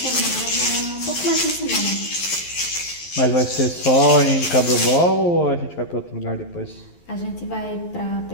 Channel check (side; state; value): right; late; 11 ms